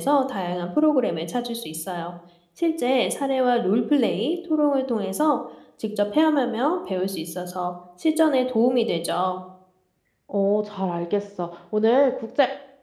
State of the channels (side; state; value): both; identical; correlation 1.00